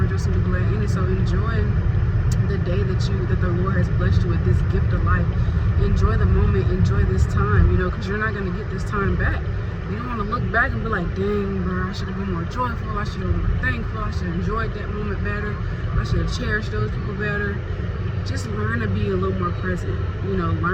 and be glad in it. So enjoy the day that the Lord has blessed you with, this gift of life. Enjoy the moment. Enjoy this time, you know, because you're not going to get this time back. You don't want to look back and be like, dang, bro, I should have been more joyful. I should have been more thankful. I should have enjoyed that moment better. I should have cherished those people better. Just learn to be a little more present. You know,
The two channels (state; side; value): identical; both; correlation 1.00